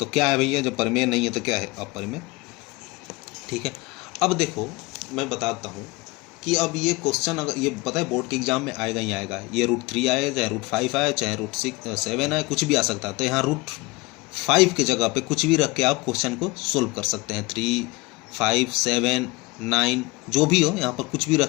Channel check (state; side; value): quieter; right; 23.8 dB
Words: तो क्या है भैया, जब परिमेय नहीं है तो क्या है, अपरिमेय। ठीक है, अब देखो मैं बताता हूँ कि अब ये क्वेश्चन अगर ये पता है बोर्ड के एग्जाम में आएगा ही आएगा, ये √3 आए, चाहे √5 आए, चाहे √7 आए, कुछ भी आ सकता है। तो यहाँ √5 की जगह पे कुछ भी रख के आप क्वेश्चन को सोल्व कर सकते हैं। 3, 5, 7, 9 जो भी हो, यहाँ पर कुछ भी